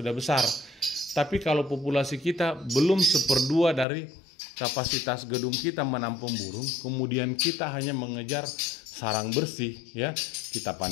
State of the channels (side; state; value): right; drops out; at 3.9 s